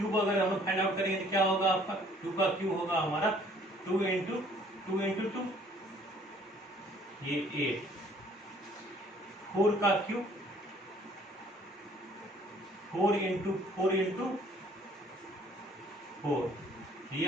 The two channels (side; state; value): both; normal; correlation 0.58